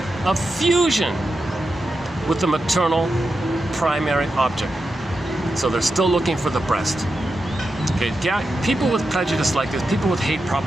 of fusion with the maternal primary object. So they're still looking for the breast. Okay, yeah, people with prejudice like this, people with hate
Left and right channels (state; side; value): normal; both; correlation 0.89